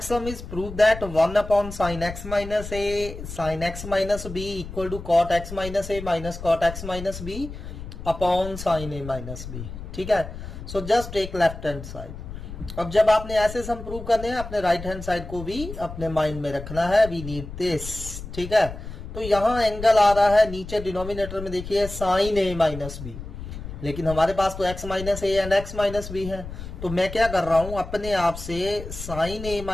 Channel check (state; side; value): noise; left; rumble, 10 dB below the sound